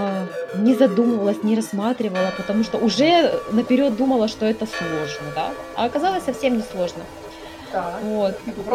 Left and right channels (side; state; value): both; identical; correlation 1.00